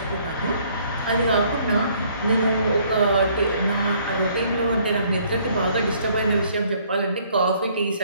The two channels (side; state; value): both; inverted; correlation -0.62